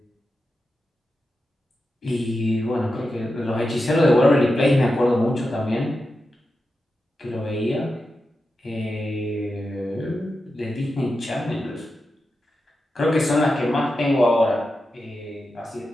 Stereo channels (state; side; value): normal; both; correlation 0.90